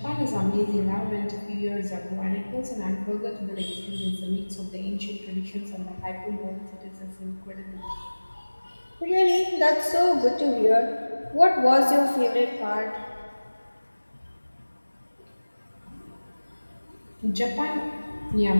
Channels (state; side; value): inverted; both; correlation -1.00